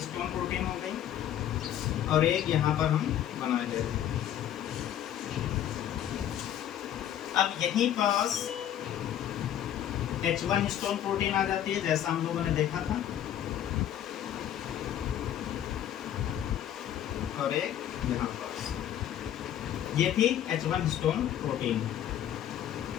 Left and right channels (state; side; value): quieter; right; 10.8 dB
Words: प्रोटीन हो गई और एक यहाँ पर हम बना दे रहे हैं। अब यहीं पास H1 हिस्टोन प्रोटीन आ जाती है, जैसा हम लोगों ने देखा था, और एक यहाँ पास ये थी H1 हिस्टोन प्रोटीन।